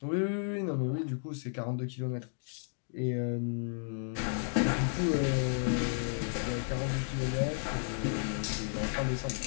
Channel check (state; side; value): silent; right; digital silence